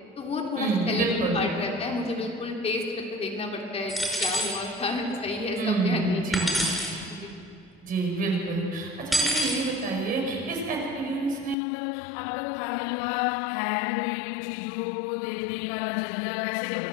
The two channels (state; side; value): drops out; right; at 11.6 s